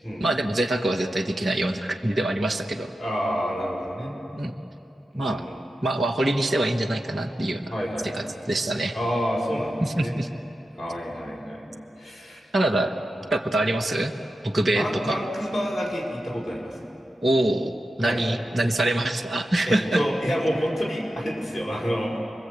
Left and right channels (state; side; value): normal; both; correlation 0.91